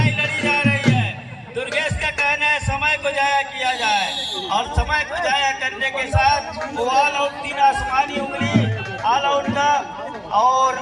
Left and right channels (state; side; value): identical; both; correlation 1.00